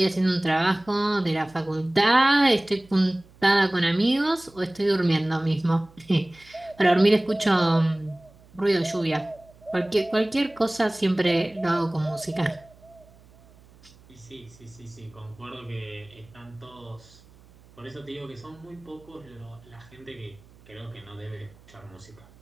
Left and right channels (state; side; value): noise; right; hum, 26 dB below the sound